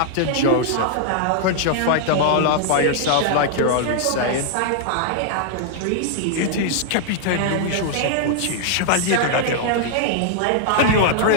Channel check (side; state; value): both; different; correlation -0.01